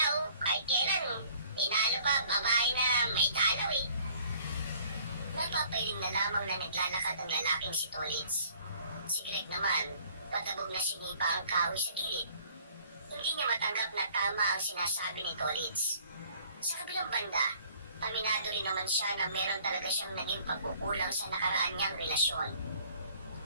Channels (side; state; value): both; inverted; correlation -0.56